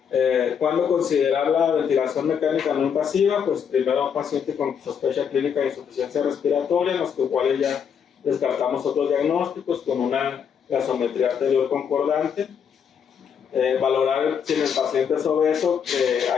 ¿Cuándo considerar la ventilación mecánica no invasiva? Pues primero a un paciente con sospecha clínica de insuficiencia respiratoria, en los cuales ya descartamos otros diagnósticos con una gasometría arterial concordante. Valorar si en el paciente es obeso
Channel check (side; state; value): right; quieter; 7.4 dB